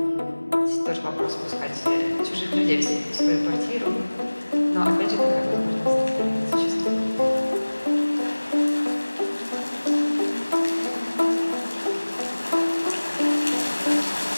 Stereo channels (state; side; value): inverted; both; correlation -1.00